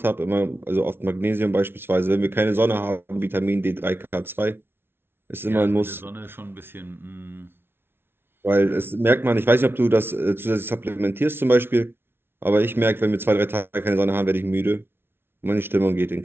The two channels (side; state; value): left; late; 0.11 ms